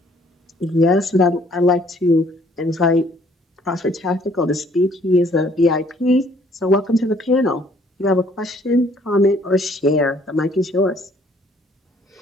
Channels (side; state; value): both; normal; correlation 0.61